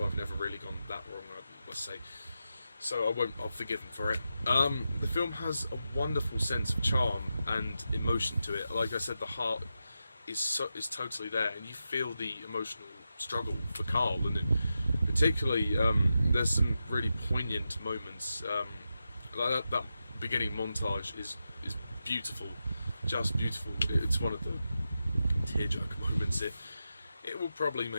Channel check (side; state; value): both; inverted; correlation -0.89